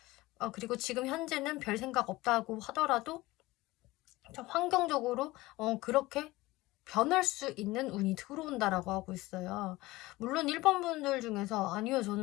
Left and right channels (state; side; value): quieter; right; 19.5 dB